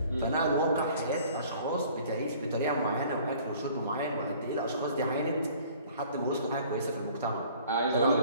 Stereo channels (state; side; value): inverted; both; correlation -0.52